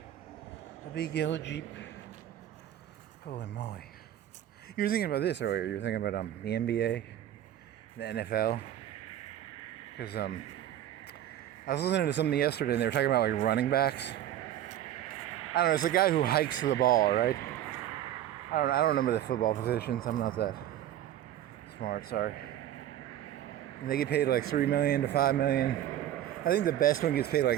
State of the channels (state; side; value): quieter; left; 11.9 dB